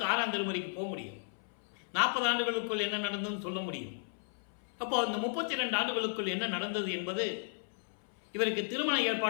6ஆம் திருமுறைக்கு போக முடியும். 40 ஆண்டுகளுக்குள் என்ன நடந்ததுன்னு சொல்ல முடியும். அப்போ இந்த 32 ஆண்டுகளுக்குள் என்ன நடந்தது என்பது, இவருக்கு திருமண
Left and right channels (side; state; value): right; silent; 55 dB below the other